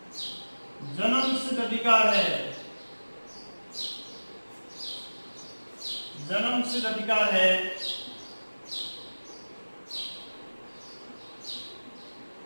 जन्मसिद्ध अधिकार है। जन्मसिद्ध अधिकार है।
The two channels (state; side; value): inverted; both; correlation -1.00